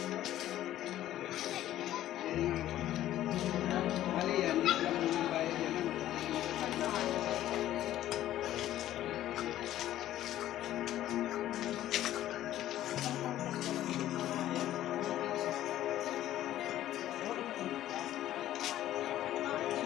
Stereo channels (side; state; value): right; quieter; 13.2 dB